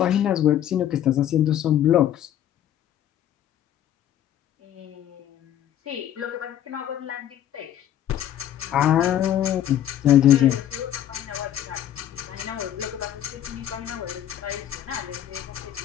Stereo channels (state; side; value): quieter; right; 11.3 dB